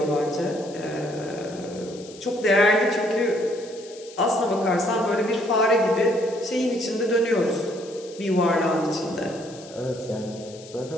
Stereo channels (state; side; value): noise; left; hiss, 19 dB below the sound